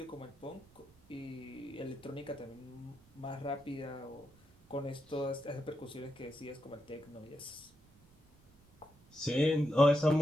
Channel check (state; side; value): noise; right; rumble, 27 dB below the sound